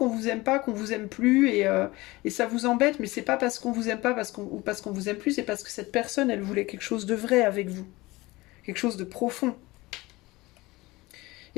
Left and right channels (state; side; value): quieter; right; 20.9 dB